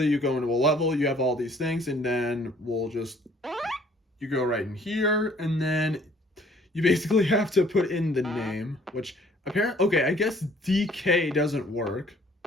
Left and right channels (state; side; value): normal; both; correlation 0.58